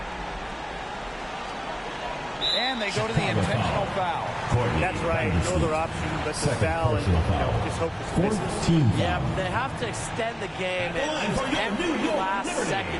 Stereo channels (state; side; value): identical; both; correlation 1.00